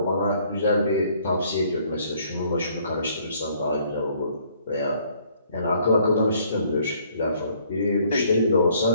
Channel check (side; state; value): both; inverted; correlation -0.63